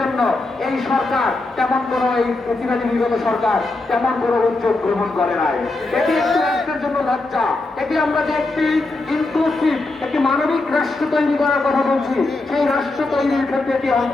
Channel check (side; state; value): right; quieter; 3.1 dB